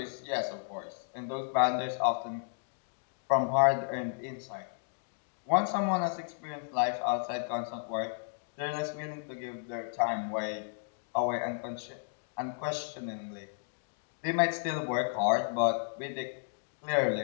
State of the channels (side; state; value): right; silent; digital silence